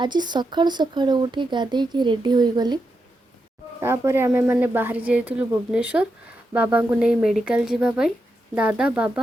सकाळु सकाळु उठी गाधे की रेडी हो गली। तापर आमे माने बाहर जाइलु भुवनेश्वर बाबा को नहीं मेडिकल जीवाई। दादा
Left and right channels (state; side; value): normal; both; correlation 0.85